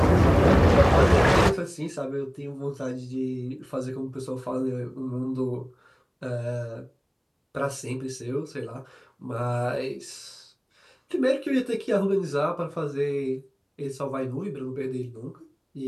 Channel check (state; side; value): identical; both; correlation 1.00